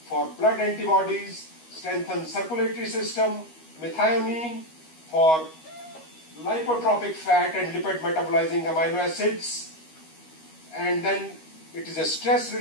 for blood antibodies, strengthens circulatory system. Methionine for lipotropic fat and lipid metabolizing amino acids. And then it is a stress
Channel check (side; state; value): right; late; 13 ms